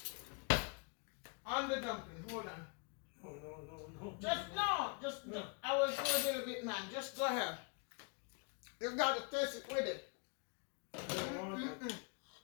On the dumpling, hold on. No. No. I will do a little bit, man. Just go ahead. You gotta taste it with it. I don't want that.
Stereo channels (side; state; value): right; quieter; 34.7 dB